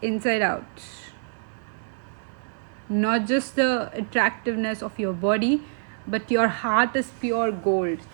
inside out. Not just the attractiveness of your body, but your heart is pure gold,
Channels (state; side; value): silent; left; 61 dB below the other